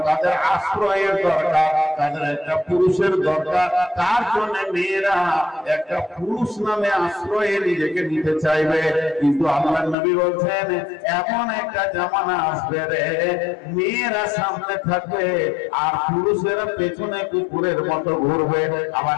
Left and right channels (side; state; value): right; drops out; at 10.0 s